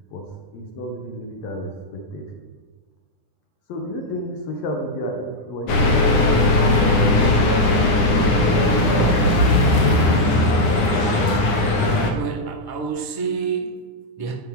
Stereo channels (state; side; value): late; right; 9.9 ms